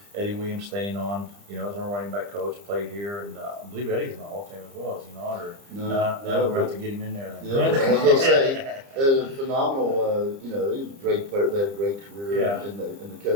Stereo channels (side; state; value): left; late; 30 ms